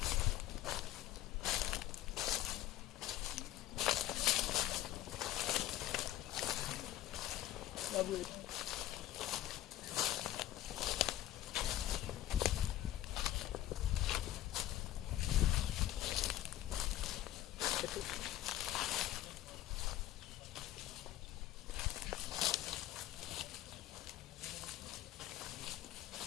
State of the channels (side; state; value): right; quieter; 13.7 dB